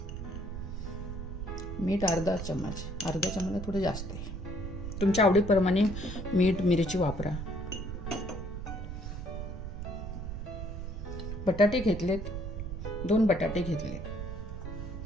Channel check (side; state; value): right; noise; rumble, 6 dB below the sound